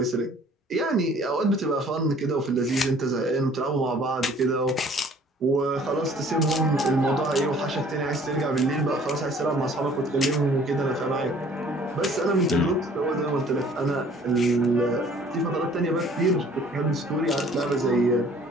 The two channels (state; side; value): normal; both; correlation 0.54